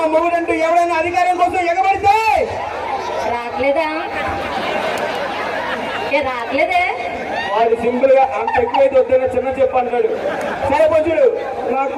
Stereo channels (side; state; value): both; identical; correlation 1.00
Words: మూడండి ఎవరైనా అధికారం కోసం ఎగబడితే రావట్లేదే. వాడు సింపుల్ గా అంత ఎక్కువైతే వద్దన్న చిన్న చెప్పు అంటాడు. సరే కొంచెడు నాకు